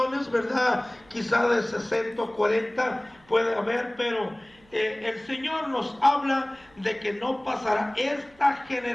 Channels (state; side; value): noise; right; hum, 29 dB below the sound